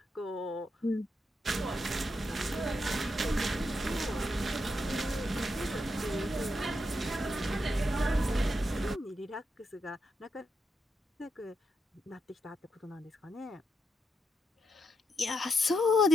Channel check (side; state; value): both; normal; correlation 0.82